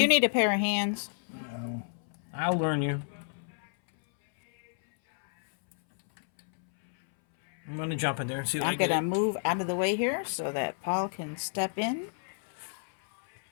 you need a pair of hands? No. I'll learn you. I'm going to jump in there and see what I'm going to move out of the way here so that Paul can step in.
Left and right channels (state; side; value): silent; right; 58 dB below the other